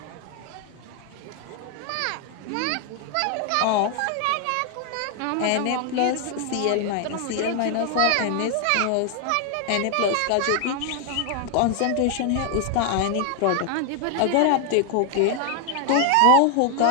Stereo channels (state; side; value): different; both; correlation 0.00